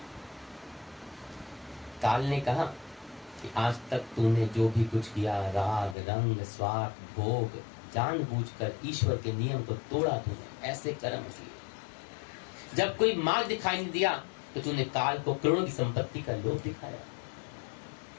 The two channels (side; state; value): right; drops out; at 6.0 s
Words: काल ने कहा कि आज तक तूने जो भी कुछ किया, राग रंग स्वार्थ भोग, जानबूझकर ईश्वर के नियम को तोड़ा तूने, ऐसे कर्म किए। जब कोई मार्ग दिखाई नहीं दिया तो तूने काल को करोड़ों की संपत्ति का लोभ दिखाया।